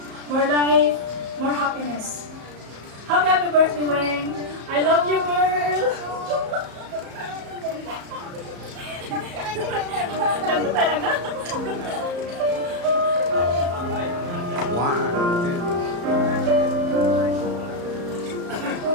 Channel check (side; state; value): left; late; 34 ms